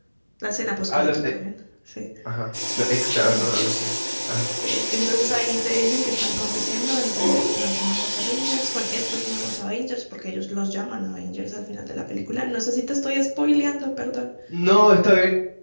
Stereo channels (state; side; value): inverted; both; correlation -1.00